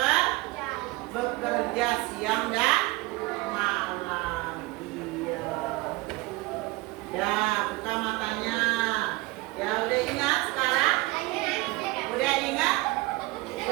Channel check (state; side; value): quieter; left; 21.9 dB